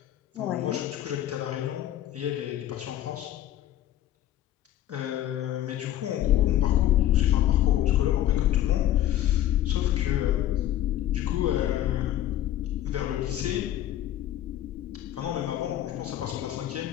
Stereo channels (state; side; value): quieter; right; 12.7 dB